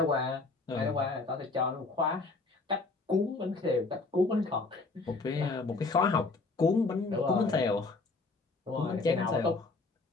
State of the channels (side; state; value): right; quieter; 3.7 dB